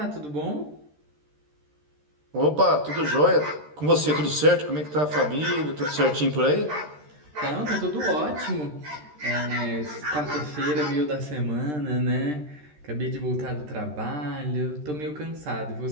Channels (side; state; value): left; late; 13 ms